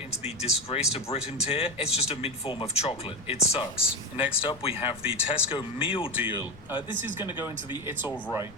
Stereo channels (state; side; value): noise; left; rumble, 23 dB below the sound